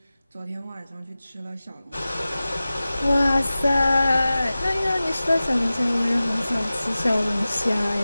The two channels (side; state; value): both; inverted; correlation -0.97